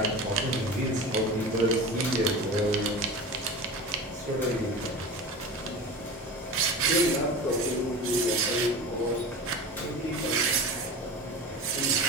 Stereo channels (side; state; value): both; normal; correlation 0.31